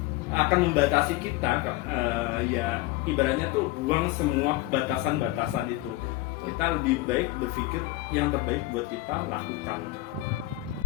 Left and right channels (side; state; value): right; quieter; 18.0 dB